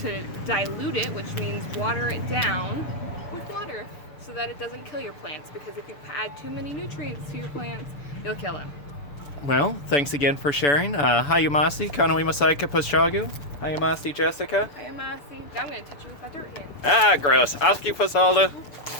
dilute it, which means water it down with water so that it doesn't kill your plants, because if you add too many nutrients to your plants, you'll kill them. Well, thanks again for sharing. Hayamasi, Kanoi Masaika Paschagu. Hayamasi, Jessica. Hi, Amasi. I'm going to touch you with my dirt hand. Ah, gross. Aski Pasalda.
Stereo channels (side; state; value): right; late; 7.0 ms